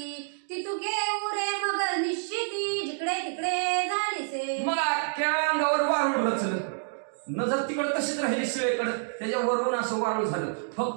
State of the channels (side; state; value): left; silent; digital silence